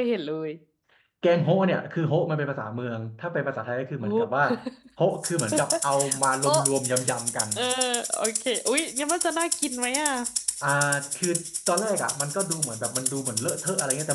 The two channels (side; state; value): both; identical; correlation 1.00